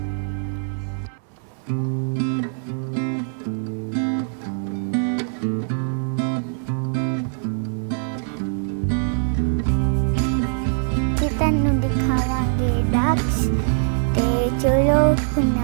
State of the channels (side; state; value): left; silent; 64 dB below the other